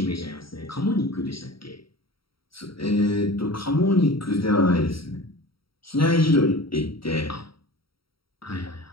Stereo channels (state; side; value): late; right; 0.75 ms